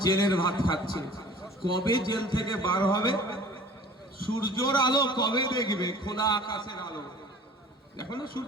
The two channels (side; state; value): both; normal; correlation 0.46